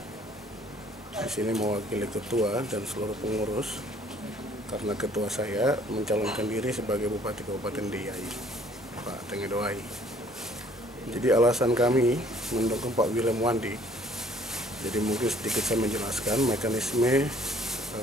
Di sini mewakili ketua dan seluruh pengurus, karena ketua saya mencalonkan diri sebagai Bupati Kabupaten Deiyai, Pak Tengedoai. Jadi alasan kami mendukung Pak Willem Wandik. Jadi mungkin sedikit saya menjelaskan mekanisme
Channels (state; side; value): normal; both; correlation 0.58